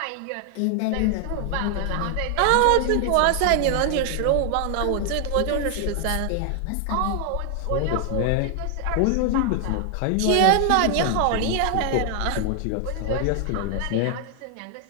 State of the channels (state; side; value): different; both; correlation 0.00